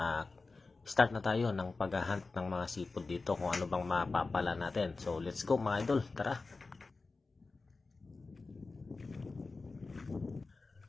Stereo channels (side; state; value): right; quieter; 3.8 dB